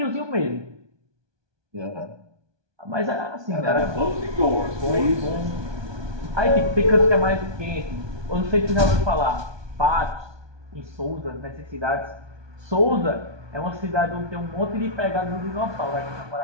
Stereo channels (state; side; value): late; left; 1.2 ms